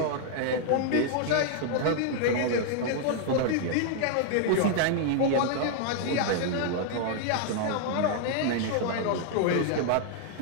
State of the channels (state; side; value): different; both; correlation 0.00